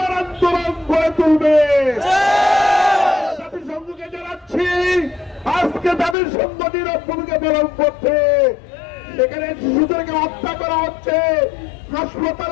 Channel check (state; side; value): drops out; right; at 6.2 s